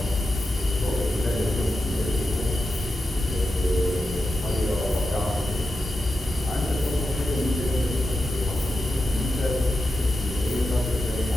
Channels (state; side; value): normal; both; correlation 0.89